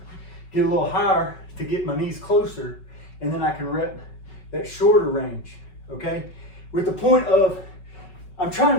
get a little higher to get my knees closer, and then I can rep that shorter range, okay? With the point of, I'm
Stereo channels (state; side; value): late; right; 5.4 ms